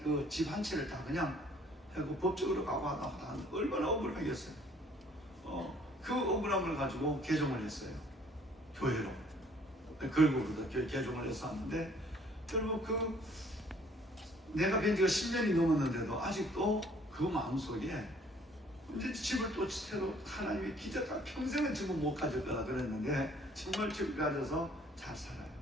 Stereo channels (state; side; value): normal; both; correlation 0.59